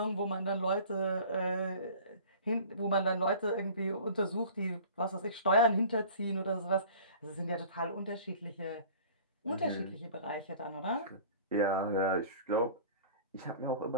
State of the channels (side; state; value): both; inverted; correlation -0.44